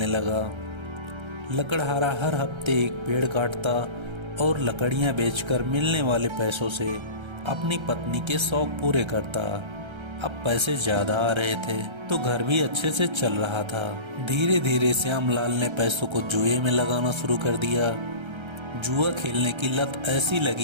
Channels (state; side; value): late; left; 1.3 ms